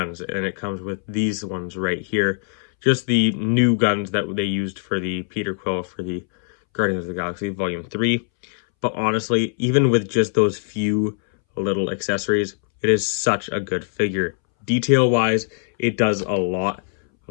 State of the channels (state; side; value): silent; right; 63 dB below the other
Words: and it comes with these ones right here. Just the new guns that they used for the Peter Quill for the Guardians of the Galaxy Volume 3. But honestly, even with just those few little accessories, it is such a good figure. Detail-wise, it does a lot.